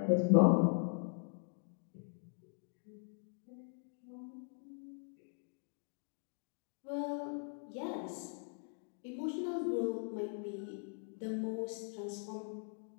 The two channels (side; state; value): right; silent; 51 dB below the other